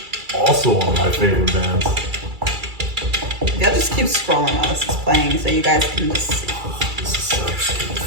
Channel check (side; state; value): left; late; 2.3 ms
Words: Also one of my favorite bands. They'll just keep scrolling while this is playing so you guys can just see. This is such good